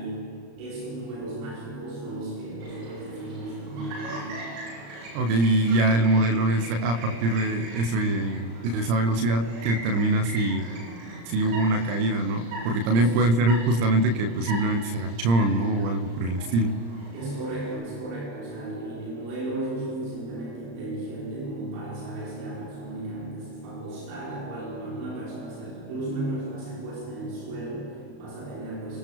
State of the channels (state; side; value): late; left; 35 ms